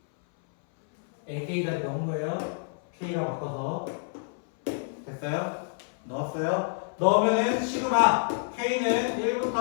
AK까지 넣은 거예요. K라고 바꿔서. 됐어요? 넣었어요? 넣으면은 시그마 K는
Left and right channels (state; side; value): silent; right; 59 dB below the other